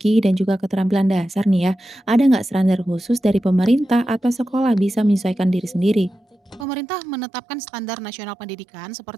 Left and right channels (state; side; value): drops out; left; at 6.7 s